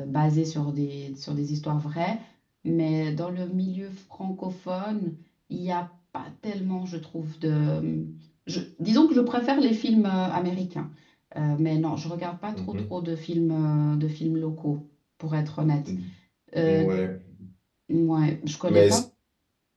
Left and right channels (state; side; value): identical; both; correlation 1.00